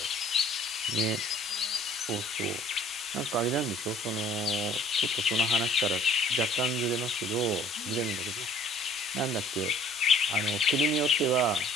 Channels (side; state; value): both; normal; correlation 0.55